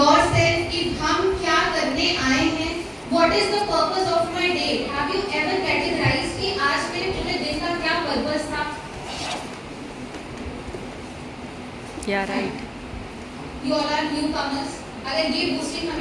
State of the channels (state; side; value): identical; both; correlation 1.00